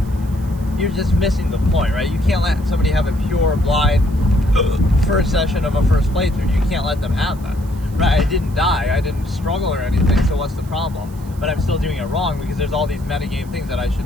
you're just missing the point, right? You can't let somebody have a pure, blind first session of a first playthrough. You can't let them have that, right? I didn't die, I didn't struggle or anything, so what's the problem? But I'm still doing it wrong because there's all these metagame things that I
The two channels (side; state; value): right; noise; hiss, 25 dB below the sound